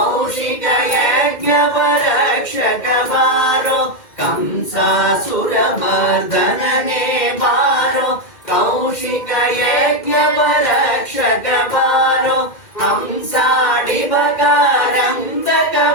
ಯಜ್ಞಪರಕ್ಷಕ ಬಾರೋ ಕಂಸಾಸುರಮರ್ದನನೇ ಬಾರೋ ಕೌಶಿಕ ಯಜ್ಞಪರಕ್ಷಕ ಬಾರೋ ಹಂಸಾಡಿಬಕಾರಂದಕ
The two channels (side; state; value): right; late; 2.1 ms